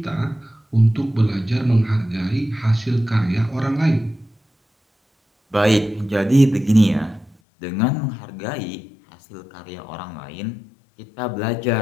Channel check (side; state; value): right; drops out; at 7.4 s